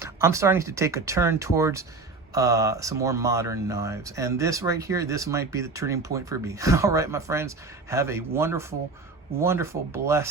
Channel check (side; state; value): left; quieter; 3.9 dB